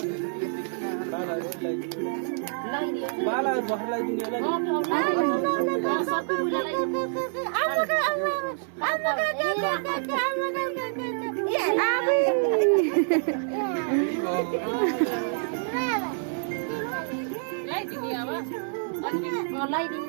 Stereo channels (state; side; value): silent; left; digital silence